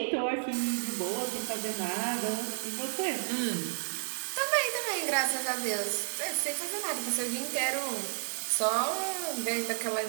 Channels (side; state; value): left; silent; 57 dB below the other